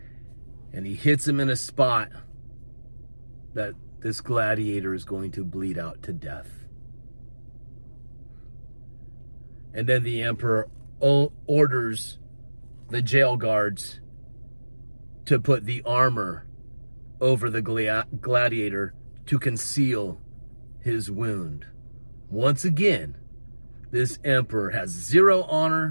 And he hits him in a spot that this gladiator is going to bleed out to death. And then the emperor orders the jail guards to put the armor over the gladiator to conceal his wound. Once again, this emperor has zero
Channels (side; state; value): both; inverted; correlation -1.00